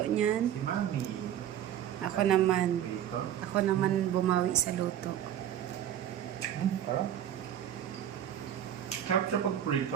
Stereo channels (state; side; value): quieter; left; 10.6 dB